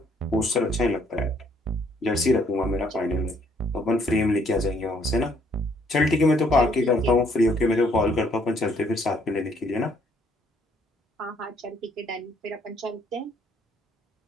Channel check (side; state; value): both; normal; correlation 0.66